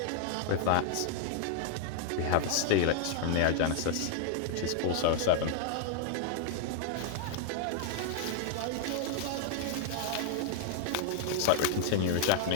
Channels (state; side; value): different; both; correlation 0.00